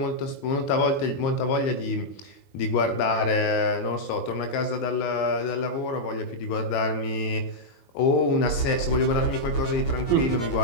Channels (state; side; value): late; right; 23 ms